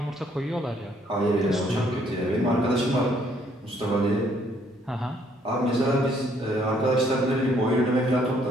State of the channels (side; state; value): both; normal; correlation 0.66